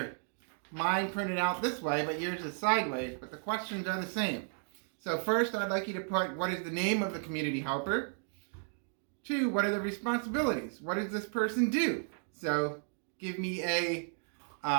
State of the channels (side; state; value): left; silent; 55 dB below the other